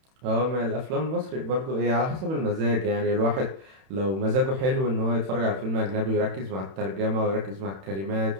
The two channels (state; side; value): late; left; 31 ms